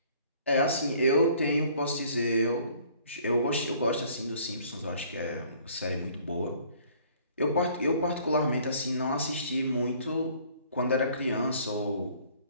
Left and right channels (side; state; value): both; inverted; correlation -0.56